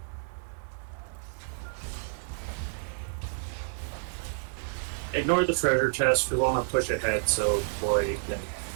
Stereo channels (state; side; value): silent; left; digital silence